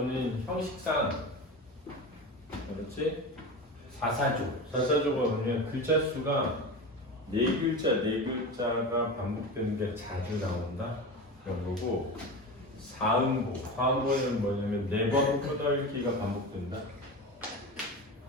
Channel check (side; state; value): both; normal; correlation 0.26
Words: 형식상, 그렇지? 사사조가 뭐냐면 글자 수가 네 글자가 반복되는 게 자주 나온다 그런 거고, 사음보는 뭐냐면 네 번 끄덕이기가 반복된다.